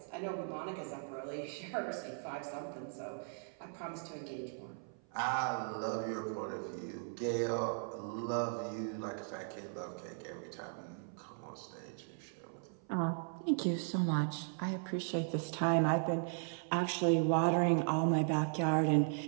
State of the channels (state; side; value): silent; left; 53 dB below the other